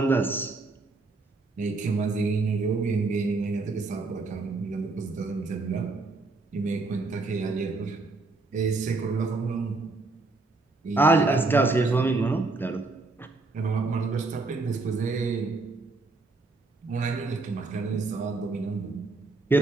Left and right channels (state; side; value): quieter; left; 3.6 dB